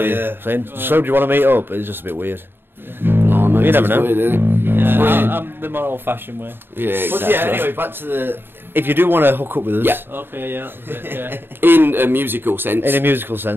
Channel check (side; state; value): left; late; 0.10 ms